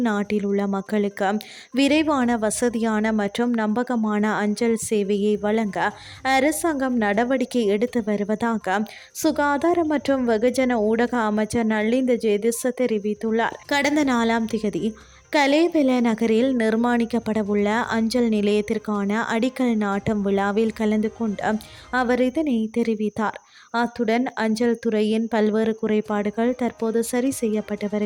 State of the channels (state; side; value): identical; both; correlation 1.00